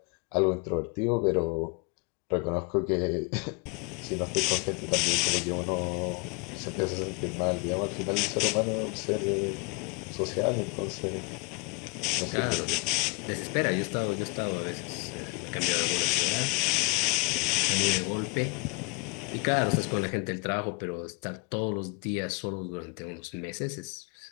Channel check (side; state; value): right; quieter; 29.6 dB